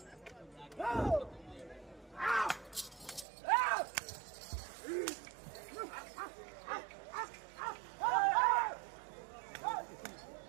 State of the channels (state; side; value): drops out; left; at 3.2 s